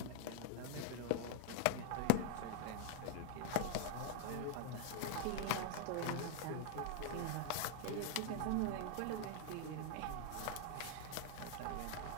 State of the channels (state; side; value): different; both; correlation 0.00